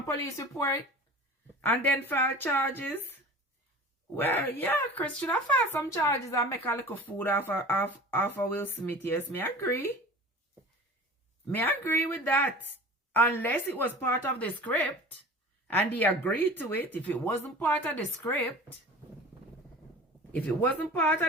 police report. And then file charges. Well, yeah, Chris should have filed some charges and make a little food off of Will Smith. Yes, me agree. Me agree with that. Unless it was part of the script and he agreed to it. If it wasn't part of the script,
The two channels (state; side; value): normal; both; correlation 0.39